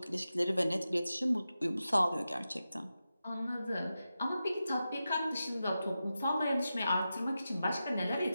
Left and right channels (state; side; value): inverted; both; correlation -0.91